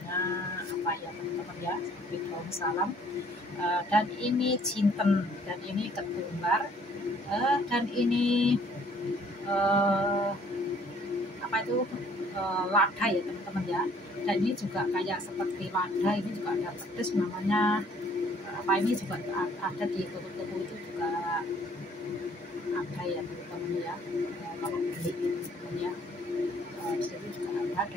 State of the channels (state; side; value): normal; both; correlation 0.60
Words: apa ya teman-teman ya, seperti daun salam. Dan ini jinten, dan ini ketumbar, dan ini apa itu, lada ya teman-teman ya. Dan ini juga kayak seperti lada, ini juga ada pedes namanya apa, ini juga ada di toko-toko itu juga ada ya teman-teman ya. Kalau beli teman-teman ya, di situ juga ada.